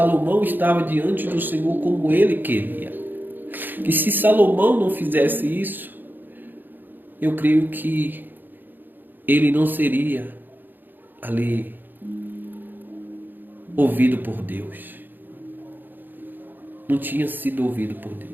estava diante do Senhor como ele queria. E se Salomão não fizesse isso, eu creio que ele não seria ali ouvido por Deus. Não tinha sido ouvido por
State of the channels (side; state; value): left; late; 0.091 ms